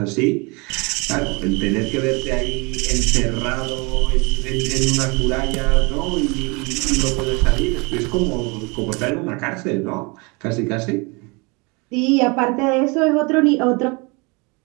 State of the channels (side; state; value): left; quieter; 29.1 dB